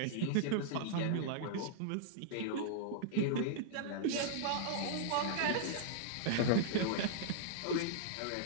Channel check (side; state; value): both; different; correlation -0.02